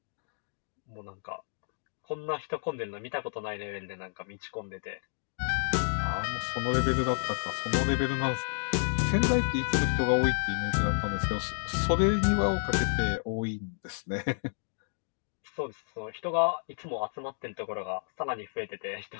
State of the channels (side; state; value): right; silent; digital silence